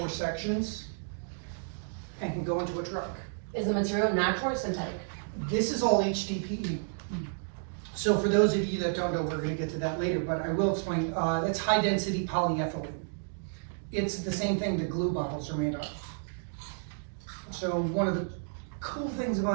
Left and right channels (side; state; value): left; silent; digital silence